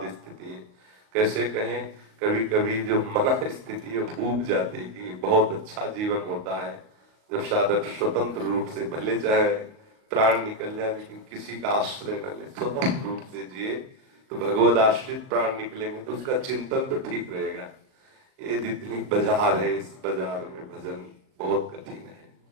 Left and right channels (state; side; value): late; left; 37 ms